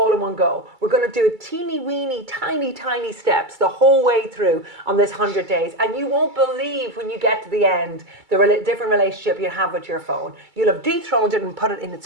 in one go. We're going to do it teeny weeny, tiny steps the whole way through on this 100 days. And you won't believe when you get to the end, the different relationship you have with your phone. You'll have dethroned it and put it in its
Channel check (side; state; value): left; late; 2.3 ms